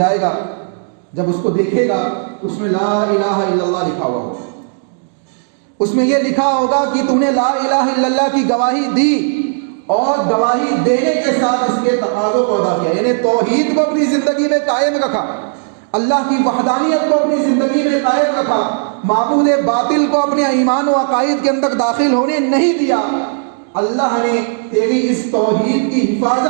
گا، جب اس کو دیکھے گا اس میں لا الہ الا اللہ لکھا ہوا ہوگا، اس میں یہ لکھا ہوگا کہ تم نے لا الہ الا اللہ کی گواہی دی اور گواہی دینے کے ساتھ اس کے تقاضوں کو ادا کیا، یعنی توحید کو اپنی زندگی میں قائم رکھا، اللہ کی وحدانیت کو اپنی زندگی میں قائم رکھا، معبود باطل کو اپنے ایمان و عقائد کے اندر داخل ہونے نہیں دیا۔ اللہ نے تیری اس توحید کی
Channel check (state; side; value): silent; left; 70 dB below the other